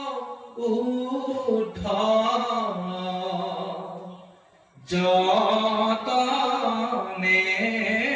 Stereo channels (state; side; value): identical; both; correlation 1.00